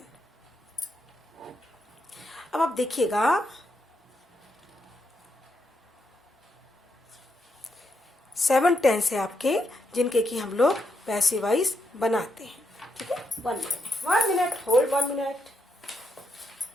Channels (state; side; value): normal; both; correlation 0.81